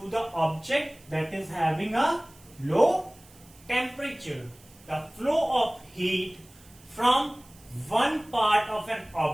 the object that is having a low temperature. The flow of heat from one part of an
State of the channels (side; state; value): right; noise; hiss, 25 dB below the sound